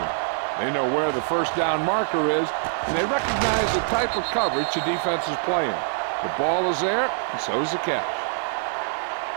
They know where the first down marker is, and they recognize the type of coverage the defense is playing. The ball is there, and so is the catch.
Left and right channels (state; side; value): silent; left; 62 dB below the other